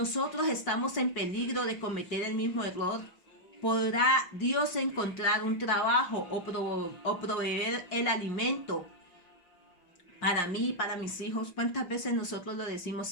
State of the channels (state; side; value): late; right; 5.6 ms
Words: estamos en peligro de cometer el mismo error. ¿Podrá Dios encontrar un trabajo o proveer el alimento para mí y para mis hijos. ¿Cuántas veces nosotros lo decimos?